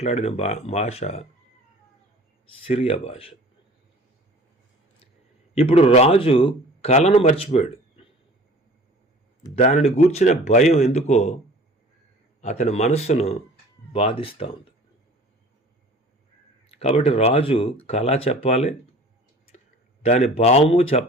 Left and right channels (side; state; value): both; normal; correlation 0.46